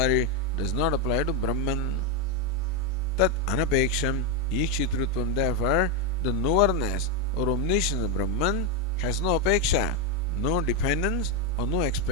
does not apply to Brahman. Tat anapeksham ikshitrutvam. Therefore, the knowerness or omniscience of Brahman has no apeksha, no dependence or no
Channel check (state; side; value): normal; both; correlation 0.05